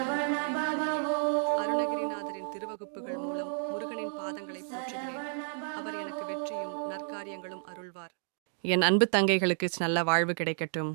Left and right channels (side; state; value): left; silent; digital silence